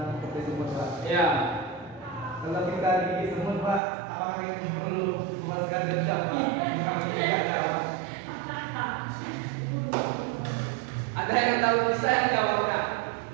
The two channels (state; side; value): drops out; left; at 3.8 s